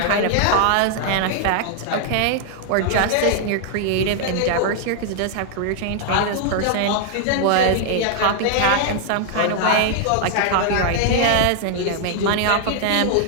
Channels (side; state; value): both; different; correlation -0.01